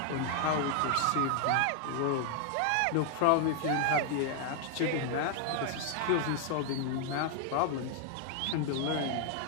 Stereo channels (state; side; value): different; both; correlation 0.00